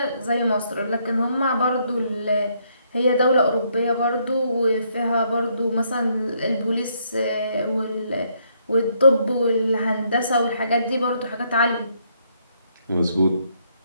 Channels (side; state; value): both; inverted; correlation -0.72